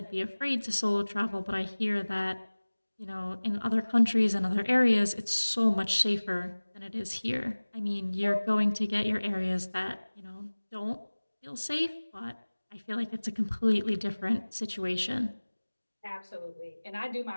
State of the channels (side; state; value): both; inverted; correlation -1.00